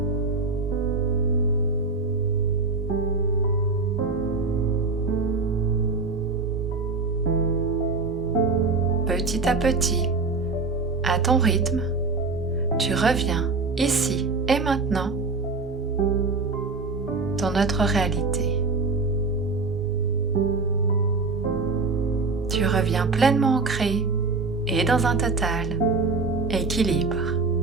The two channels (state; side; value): quieter; left; 3.9 dB